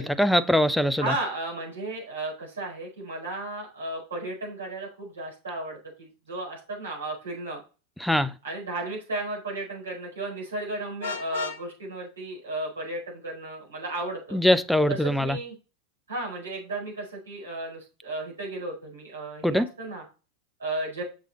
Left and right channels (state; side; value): normal; both; correlation 0.58